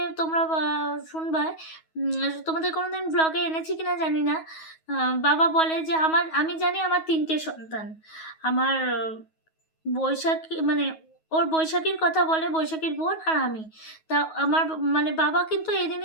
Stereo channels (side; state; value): right; late; 9.3 ms